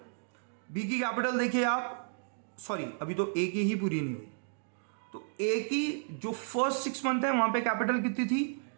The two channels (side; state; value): left; silent; digital silence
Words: बी की कैपिटल देखिए आप, सॉरी अभी तो ए की ही पूरी नहीं हुई, तो ए की जो फर्स्ट 6 मंथ है वहां पे कैपिटल कितनी थी?